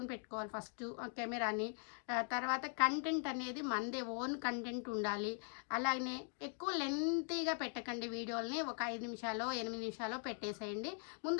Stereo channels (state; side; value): silent; right; 50 dB below the other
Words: పెట్టుకోవాలి ఫస్ట్ కెమెరాని. తర్వాత కంటెంట్ అనేది మనదే ఓన్ కంటెంట్ ఉండాలి. అలాగే ఎక్కువ లెంతీగా పెట్టకండి వీడియోలని. ఒక 5 నిమిషాలు 8 నిమిషాలు పెట్టేసేయండి.